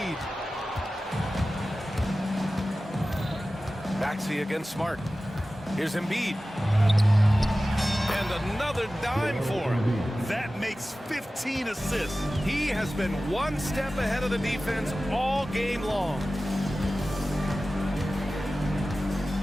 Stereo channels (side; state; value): both; normal; correlation 0.96